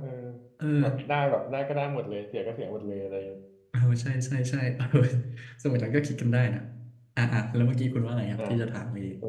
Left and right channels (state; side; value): identical; both; correlation 1.00